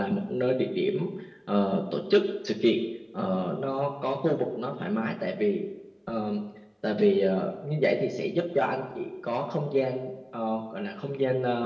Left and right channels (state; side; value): identical; both; correlation 1.00